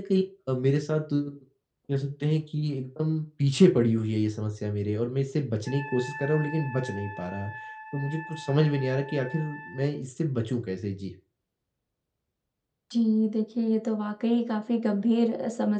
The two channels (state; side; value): identical; both; correlation 1.00